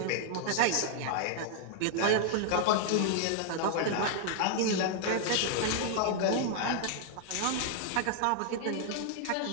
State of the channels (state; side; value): different; both; correlation 0.00